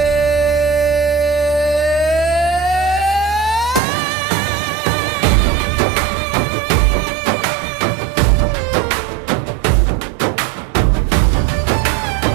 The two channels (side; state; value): left; drops out; at 3.8 s